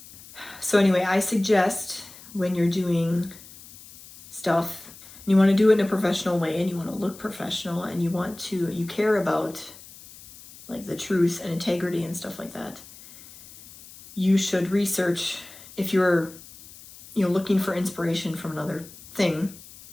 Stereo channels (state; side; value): noise; left; hiss, 19 dB below the sound